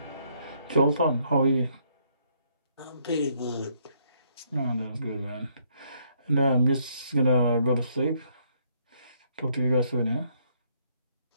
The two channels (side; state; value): both; inverted; correlation -0.70